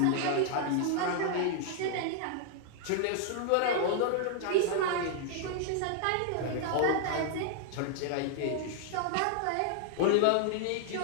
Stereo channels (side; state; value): both; different; correlation 0.00